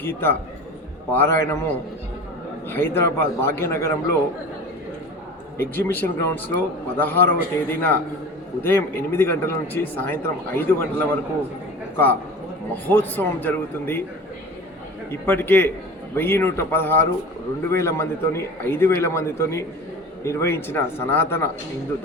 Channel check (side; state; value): both; normal; correlation 0.36